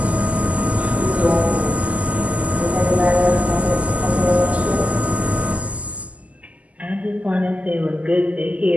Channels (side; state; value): left; late; 0.070 ms